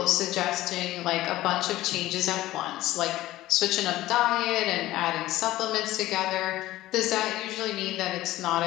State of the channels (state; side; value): quieter; right; 16.0 dB